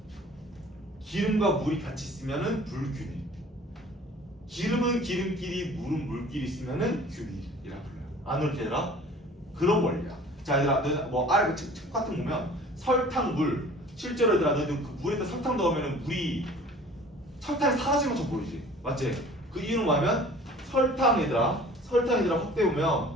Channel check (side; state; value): both; normal; correlation 0.47